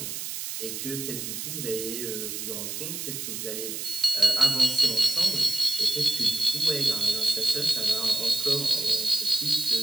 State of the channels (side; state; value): right; noise; hiss, 6 dB below the sound